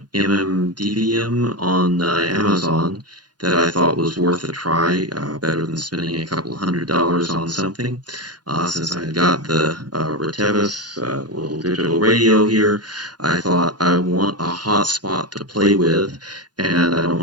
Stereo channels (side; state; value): left; late; 0.70 ms